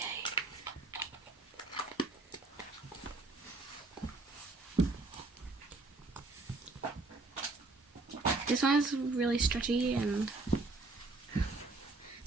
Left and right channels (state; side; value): quieter; left; 3.4 dB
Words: This one is really stretchy and